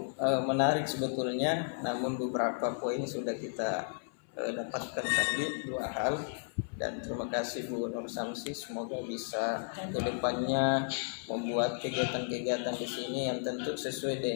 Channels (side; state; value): right; silent; 55 dB below the other